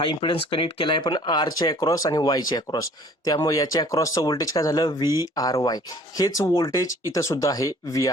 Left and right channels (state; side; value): normal; both; correlation 0.53